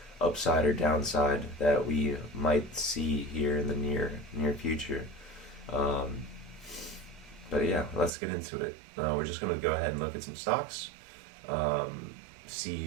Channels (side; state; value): left; drops out; at 8.1 s